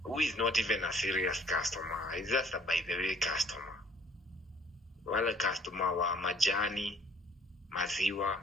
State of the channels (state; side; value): normal; both; correlation 0.58